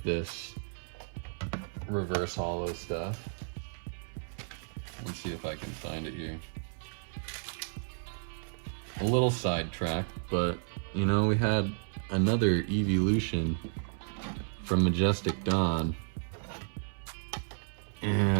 this reverse holo stuff. Let's see if I can find it here. A little sidetracked, but you know, we had another evolution from Majestic Dawn,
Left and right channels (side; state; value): left; silent; 56 dB below the other